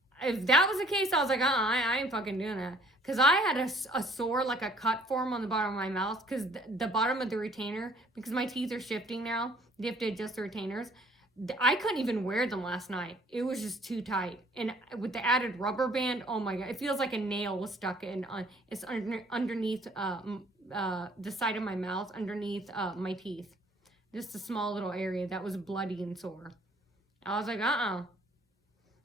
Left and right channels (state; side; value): normal; both; correlation 0.59